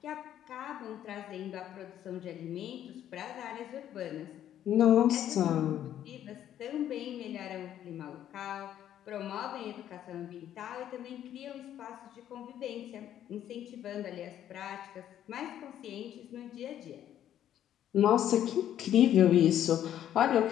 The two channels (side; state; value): right; quieter; 11.0 dB